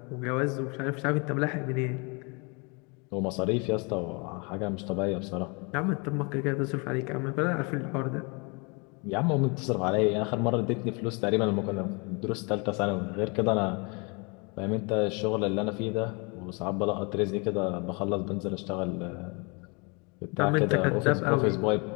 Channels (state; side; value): quieter; right; 31.5 dB